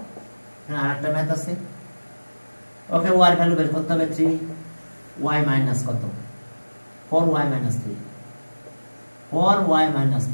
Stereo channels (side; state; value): both; inverted; correlation -1.00